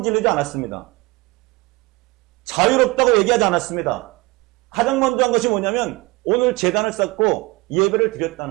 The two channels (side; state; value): left; quieter; 23.3 dB